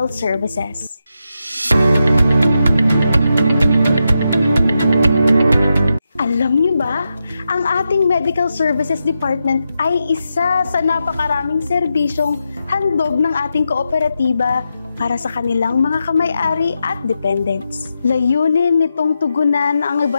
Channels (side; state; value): both; inverted; correlation -0.87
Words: Services. Alam niyo ba, ang ating Medical Services Department ay isa sa napakaraming serbisyong handog ng ating kooperatiba para sa kanilang mga kamay-ari at dependents. Layunin nitong tugunan ang